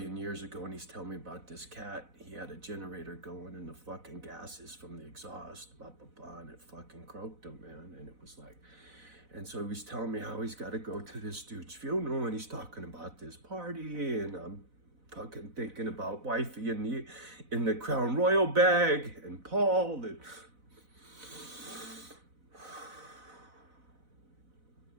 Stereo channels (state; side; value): late; left; 4.0 ms